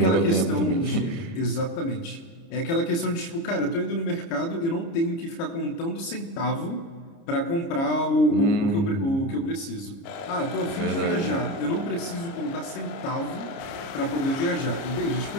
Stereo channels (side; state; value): right; late; 30 ms